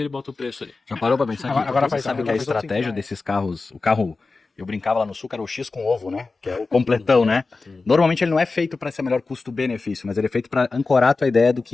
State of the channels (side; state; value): right; quieter; 3.9 dB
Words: bota o preço ali. Já parou pra pensar que Agora você sabe que a estratégia desses carros, o carro, eu brincava lá no sul, que era o X com ovo, né? Que é o completão, né? Normalmente ele não é feito para ser melhor custo-benefício, mas ele é feito para ancorar a tua ideia do